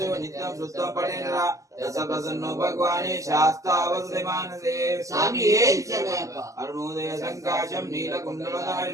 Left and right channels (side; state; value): left; late; 0.16 ms